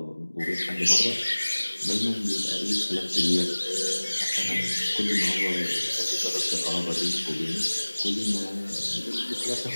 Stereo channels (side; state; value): both; inverted; correlation -1.00